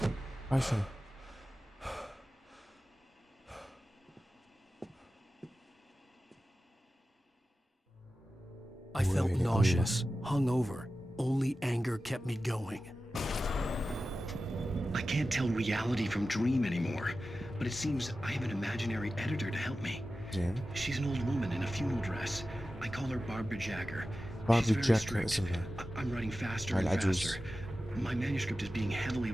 هاي شنو؟ I felt Really? nauseous, hungover. Only anger kept me going. I can't tell reality from dream anymore, but it seems I have an imaginary editor to help me. زين. She's an old woman in a funeral dress. I call her Barbara Jagger. Barbara She's very Jagger strict. اسمها. I'm writing faster هاي and العجوز. faster. My manuscript is being heavily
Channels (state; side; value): normal; both; correlation 0.94